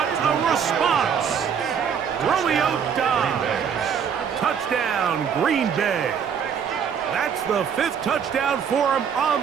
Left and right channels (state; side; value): quieter; left; 7.4 dB